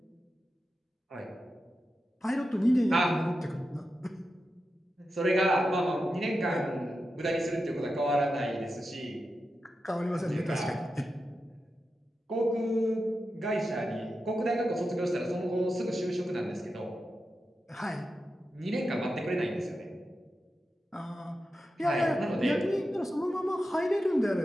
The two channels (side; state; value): both; normal; correlation 0.90